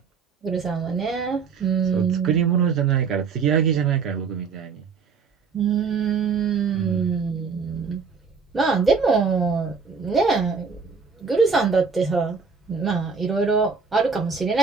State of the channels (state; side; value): quieter; left; 5.4 dB